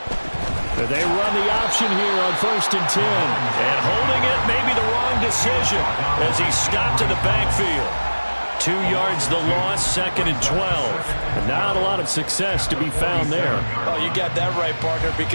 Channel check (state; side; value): inverted; both; correlation -1.00